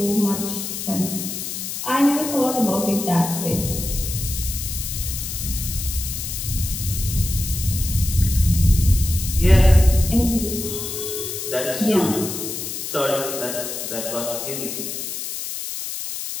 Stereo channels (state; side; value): noise; left; hiss, 6 dB below the sound